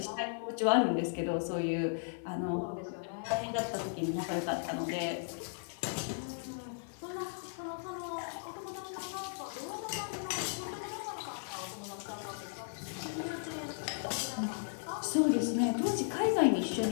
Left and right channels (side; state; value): right; silent; 54 dB below the other